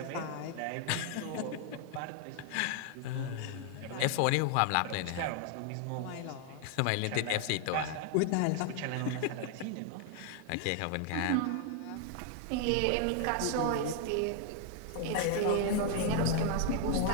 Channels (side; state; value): both; different; correlation 0.00